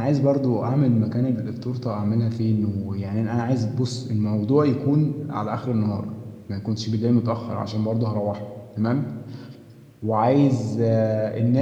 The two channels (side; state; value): both; identical; correlation 1.00